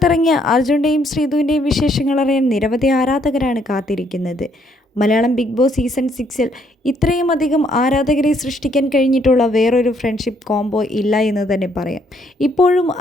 അർജുൻ്റെയും ശ്രീതുവിൻ്റെയും വിശേഷങ്ങൾ അറിയാൻ നിരവധി ആരാധകരാണ് കാത്തിരിക്കുന്നത്. മലയാളം ബിഗ് ബോസ് സീസൺ 6-ൽ ഇത്രയും അധികം ആരാധകരെ സൃഷ്ടിക്കാൻ കഴിഞ്ഞിട്ടുള്ള വേറൊരു ഫ്രണ്ട്ഷിപ്പ് കോംബോ ഇല്ല എന്ന് തന്നെ പറയാം. ഇപ്പോഴും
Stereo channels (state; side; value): normal; both; correlation 0.69